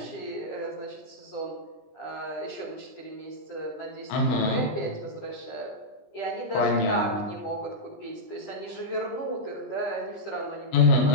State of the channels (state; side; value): late; right; 20 ms